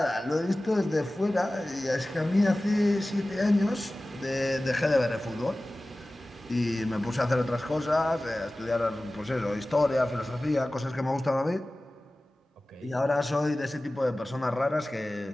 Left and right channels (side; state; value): both; normal; correlation 0.97